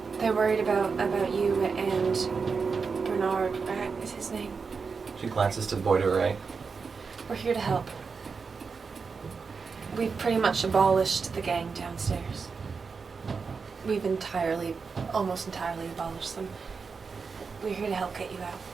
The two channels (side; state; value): left; quieter; 5.1 dB